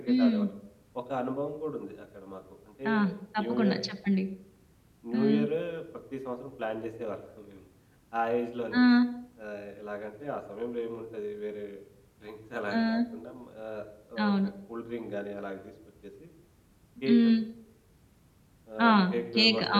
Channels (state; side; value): identical; both; correlation 1.00